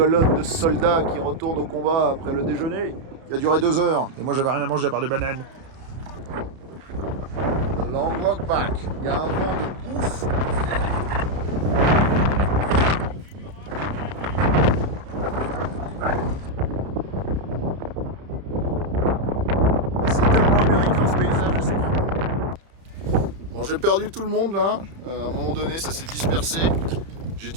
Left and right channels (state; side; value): late; left; 30 ms